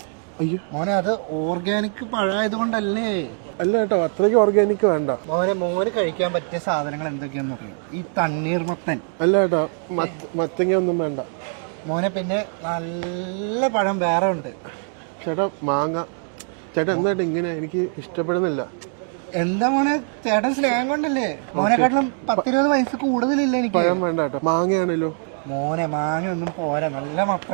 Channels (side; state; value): left; silent; 56 dB below the other